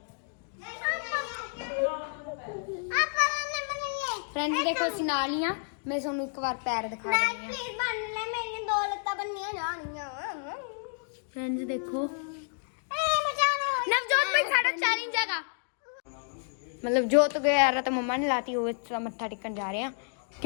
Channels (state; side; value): silent; right; digital silence